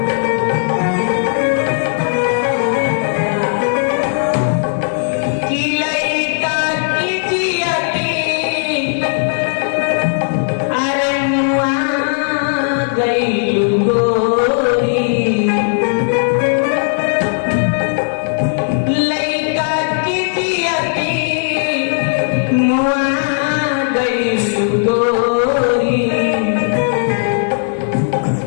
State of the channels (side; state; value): right; silent; 69 dB below the other